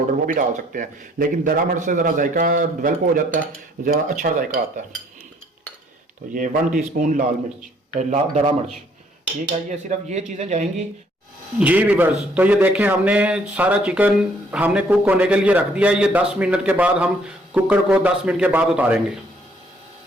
वो भी डाल सकते हैं, लेकिन दरा मिर्च से ज़रा जायका डेवलप हो जाता है, ज़रा अच्छा जायका आता है। तो ये 1 टीस्पून लाल मिर्च दरा मिर्च। ठीक है, ये सिर्फ ये चीज़ें जाएंगी। जी वीवर्स, तो ये देखें हमने सारा चिकन हमने कुक होने के लिए रख दिया है। ये 10 मिनट के बाद हम कुकर को 10 मिनट के बाद उतारेंगे।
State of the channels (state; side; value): normal; both; correlation 0.64